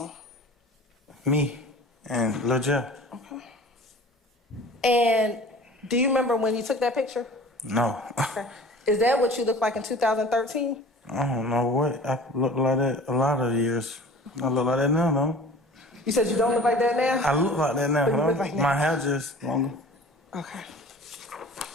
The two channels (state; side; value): normal; both; correlation 0.43